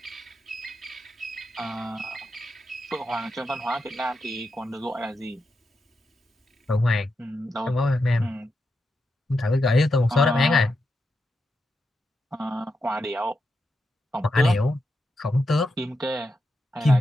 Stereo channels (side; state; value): both; normal; correlation 0.86